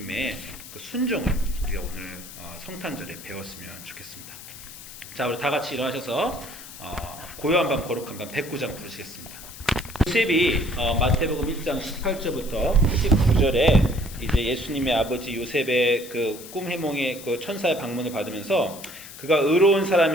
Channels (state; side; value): noise; left; hiss, 15 dB below the sound